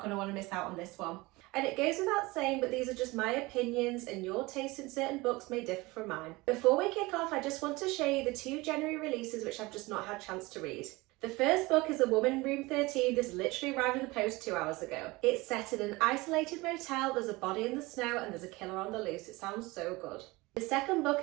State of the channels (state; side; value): quieter; left; 22.3 dB